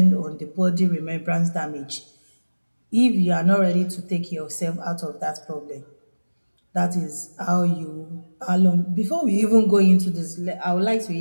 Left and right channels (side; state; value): both; inverted; correlation -1.00